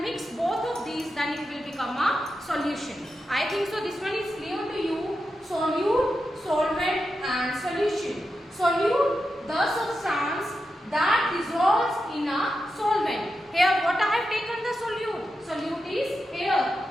mix both of these then it will become a solution. I think so this one is clear to you. Solute, solvent and solution. Solute, the substance that dissolves in a solvent. Here what I have taken the solute. Solute is here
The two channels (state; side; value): normal; both; correlation 0.89